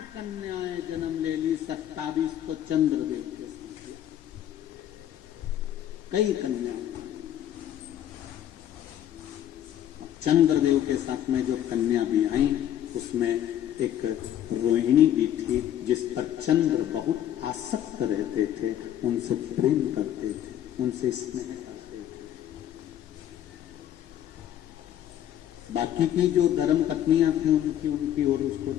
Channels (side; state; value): right; quieter; 11.1 dB